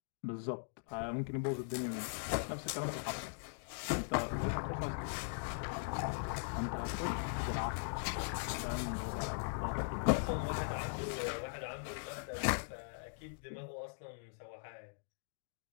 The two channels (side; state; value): right; silent; digital silence